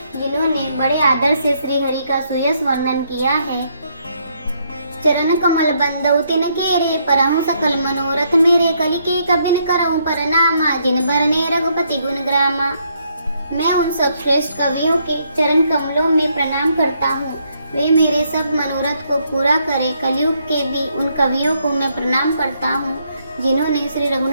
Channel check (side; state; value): both; inverted; correlation -0.73